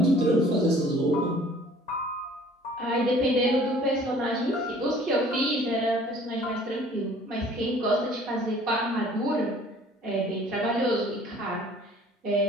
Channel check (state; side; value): normal; both; correlation 0.52